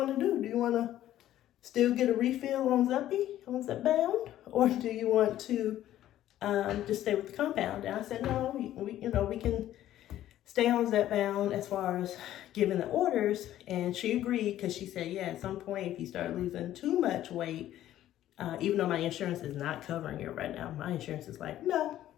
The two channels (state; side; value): quieter; right; 12.9 dB